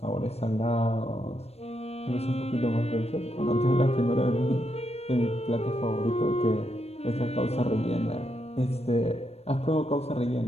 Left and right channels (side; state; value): right; late; 0.30 ms